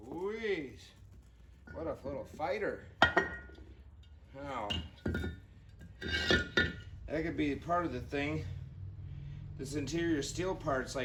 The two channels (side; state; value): both; identical; correlation 1.00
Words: Louise, what a little fighter. Now, that could be part of the thing. This interior steel part's